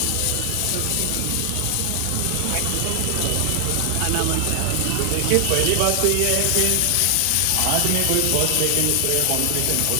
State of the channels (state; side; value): different; both; correlation 0.00